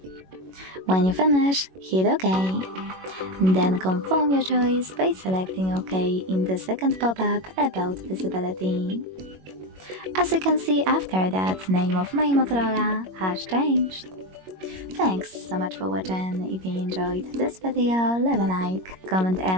When you finish, hit OK. Then confirm your choice by selecting OK in the second pop-up about visibility. As you can see, after that, name of my Motorola has changed. Thanks so much for watching. If you enjoyed this video, leave a like, comment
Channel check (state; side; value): late; left; 21 ms